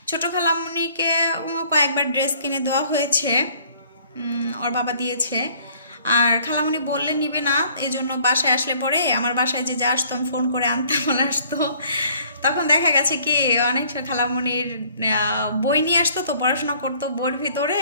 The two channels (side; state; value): both; inverted; correlation -0.58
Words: ছোট খালামণিকে কয়েকবার ড্রেস কিনে দেওয়া হয়েছে, ওর বাবা দিয়েছে। আর খালামণি বললে নিবে না, এই জন্য বাসায় আসলে পরে আমার বাসায় যে আসতো আমি ফোন করে আনতাম, বলে আসতো। তখন দেখা গেছে কি অনেক খালামণির বই নিয়ে আসতো, তো পড়াশোনা করতো, বইয়ের ভিতরে